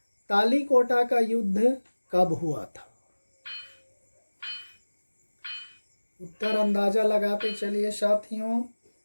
तालीकोटा का युद्ध कब हुआ था? उत्तर अंदाजा लगाते चलिए साथियों।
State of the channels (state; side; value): inverted; both; correlation -1.00